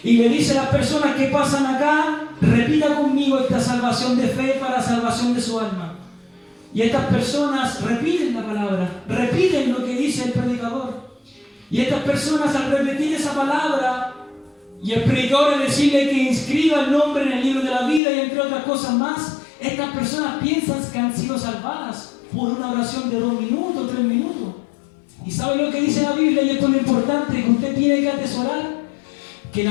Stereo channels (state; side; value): drops out; right; at 18.0 s